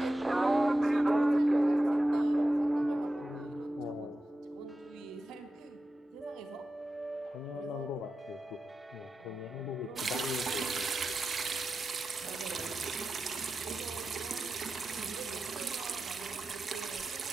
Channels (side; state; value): both; normal; correlation 0.92